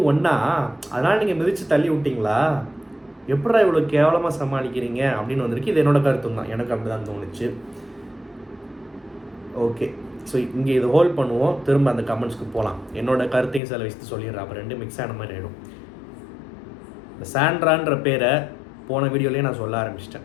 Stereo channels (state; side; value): drops out; right; at 13.6 s